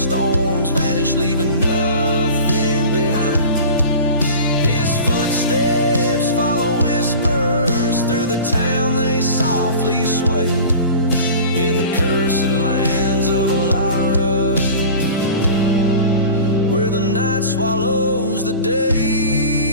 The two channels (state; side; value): inverted; both; correlation -0.37